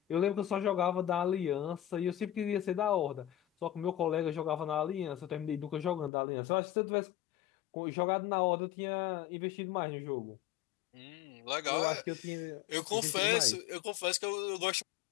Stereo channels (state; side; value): drops out; right; at 6.1 s